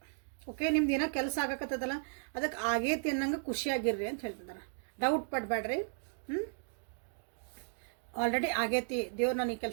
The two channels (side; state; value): left; silent; digital silence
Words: Okay, ನಿಮ್ದು ಏನೋ ಕೆಲಸ ಆಗಕತ್ತದಲ್ಲ, ಅದಕ್ಕೆ ಆಗೈತಿ ಅನ್ನಂಗೆ ಖುಷಿಯಾಗಿರ್ರಿ ಅಂತ ಹೇಳ್ತಿದ್ದಾರೆ. ಡೌಟ್ ಪಡಬೇಡ್ರಿ. ಆಲ್ರೆಡಿ ಆಗೈತಿ, ದೇವ್ರು ನಾನು ಈ